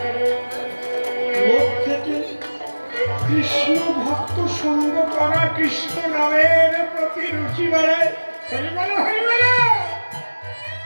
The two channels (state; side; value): inverted; both; correlation -1.00